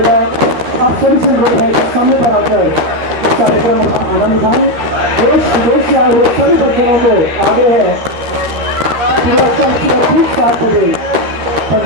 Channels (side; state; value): left; late; 13 ms